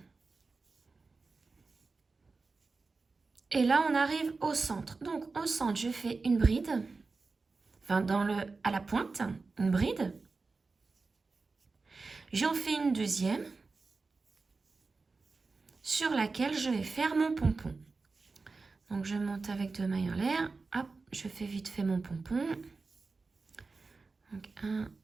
Et là, on arrive au centre. Donc, au centre, je fais une bride. Enfin, à la pointe, une bride. J'en fais une deuxième sur laquelle je vais faire mon pompon. Donc, je monte avec 2 mailles en l'air. Hop, je fais vite fait mon pompon. Donc, 1,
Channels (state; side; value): quieter; left; 4.0 dB